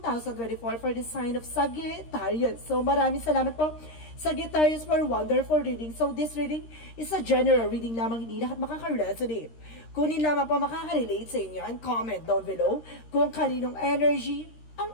for the sign of Sagittarius. So maraming salamat po Sagittarius for wonderful reading. So this reading is a general reading lamang, hindi lahat makaka-resonate. Kunin lamang po makaka-relate sa inyo and comment down below kung kaninong energy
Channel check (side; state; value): right; late; 13 ms